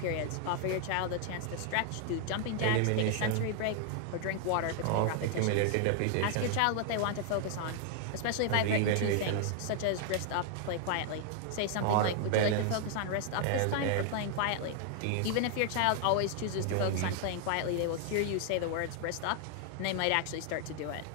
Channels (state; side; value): different; both; correlation 0.00